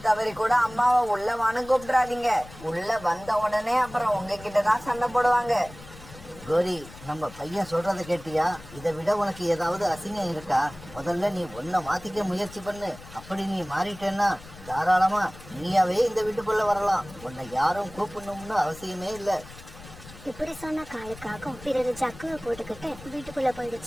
தவறி கூட அம்மாவை உள்ள வான்னு கூப்பிடாதீங்க. உள்ள வந்த உடனே அப்புறம் உங்ககிட்ட தான் சண்டை போடுவாங்க. கோரி, நம்ம பையன் சொல்றத கேட்டியா? இதை விட உனக்கு ஏதாவது அசிங்கம் இருக்கா? முதல்ல நீ உன்னை மாத்திக்க முயற்சி பண்ணு. அப்படி நீ மாறிட்டேன்னா தாராளமா நீயாவே இந்த வீட்டுக்குள்ள வரலாம். உன்னை யாரும் கூப்பிடணும்னு அவசியமே இல்லை. இப்படி சொன்ன காலுக்காகவும் பிறகு ஜக்குவை போட்டுக்கிட்டு வீட்டுக்குள்ள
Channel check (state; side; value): noise; left; rumble, 18 dB below the sound